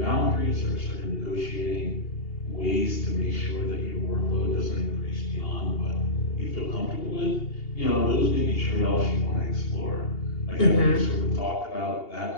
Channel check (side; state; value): right; late; 2.8 ms